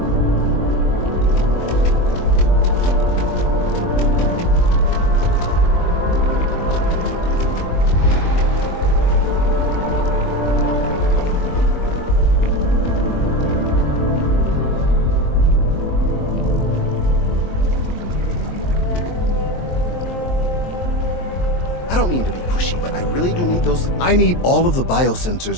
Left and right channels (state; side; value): late; right; 23 ms